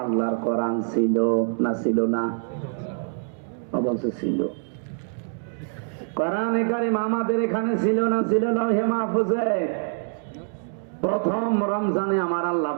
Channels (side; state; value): left; silent; digital silence